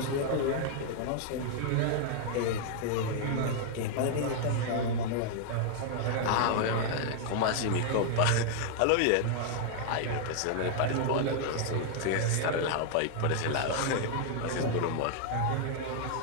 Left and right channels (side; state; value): both; different; correlation 0.00